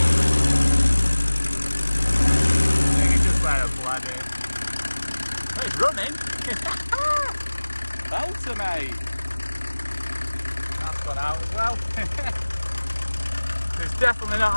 I think it's just where I've bled it. Oh, it's running. Belter, mate. That's gone out as well. There's definitely not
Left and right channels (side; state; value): both; inverted; correlation -1.00